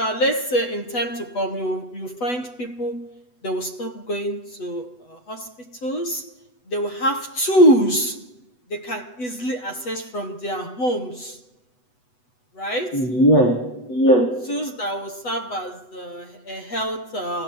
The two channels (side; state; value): right; late; 8.0 ms